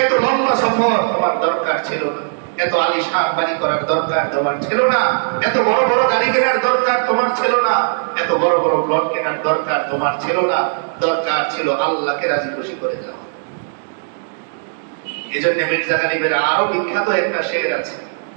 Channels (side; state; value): left; silent; digital silence